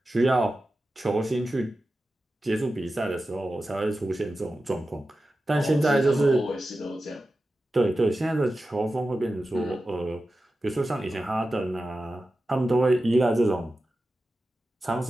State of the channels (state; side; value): normal; both; correlation 0.93